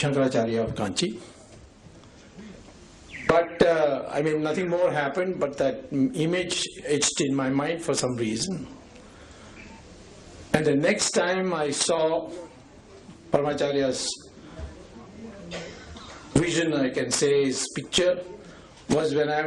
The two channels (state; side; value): identical; both; correlation 1.00